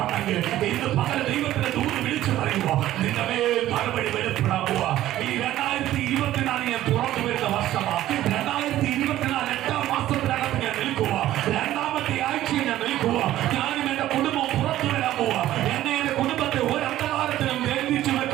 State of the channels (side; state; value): left; quieter; 13.9 dB